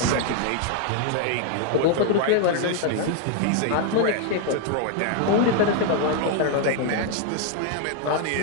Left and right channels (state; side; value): different; both; correlation 0.00